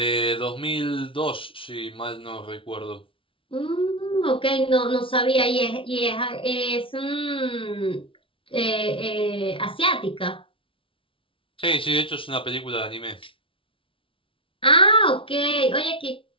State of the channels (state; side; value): late; right; 0.25 ms